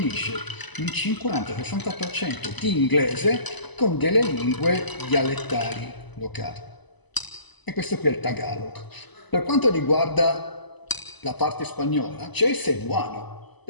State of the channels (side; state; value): right; late; 1.0 ms